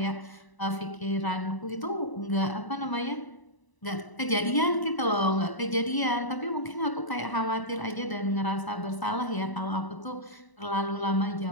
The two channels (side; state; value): right; late; 1.0 ms